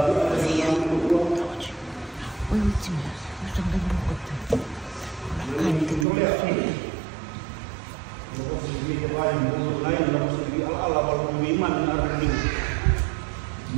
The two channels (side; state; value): left; drops out; at 6.1 s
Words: ultima, gusto ng ganun ko ito. Kain dito na